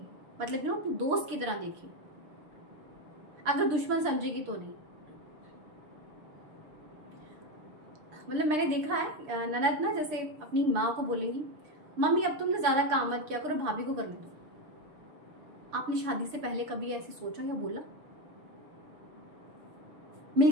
मतलब अपनी दोस्त की तरह देखे। अगर दुश्मन समझेगी तो नहीं। मतलब मैंने देखा है ननद ना जैसे अपनी माँ को बोलेंगी, मम्मी अब तुमने ज्यादा काम मत किया करो, भाभी को करने दो। आपने शादी से पहले कभी ऐसे सोचा या बोला?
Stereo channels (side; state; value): left; late; 6.7 ms